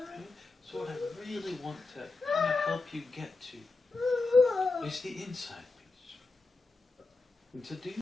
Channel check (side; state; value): right; quieter; 3.7 dB